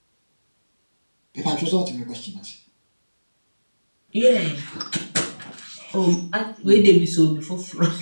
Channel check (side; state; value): both; inverted; correlation -1.00